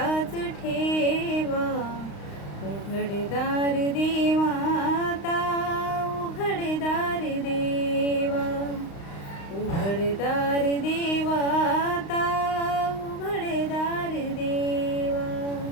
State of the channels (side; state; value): right; late; 35 ms